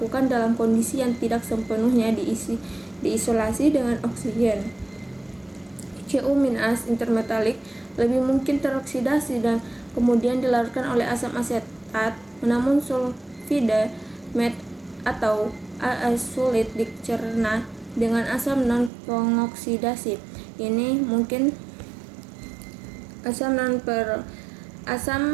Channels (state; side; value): drops out; left; at 18.9 s